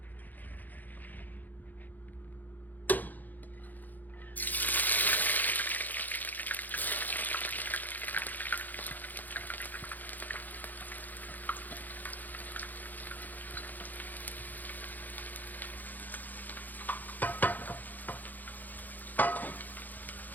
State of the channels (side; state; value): right; late; 0.084 ms